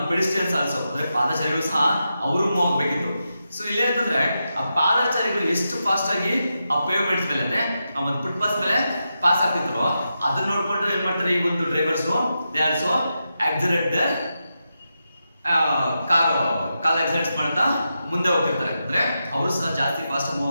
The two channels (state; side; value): inverted; both; correlation -0.88